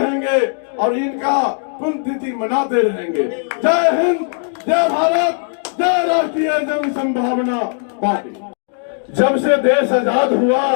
और इनका पुण्यतिथि मनाते रहेंगे। जय हिंद, जय भारत, जय राष्ट्रीय जन संभावना पार्टी। जब से देश आजाद हुआ,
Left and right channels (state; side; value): silent; right; 64 dB below the other